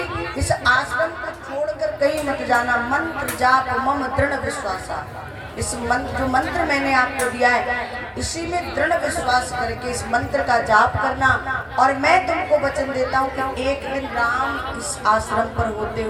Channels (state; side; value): identical; both; correlation 1.00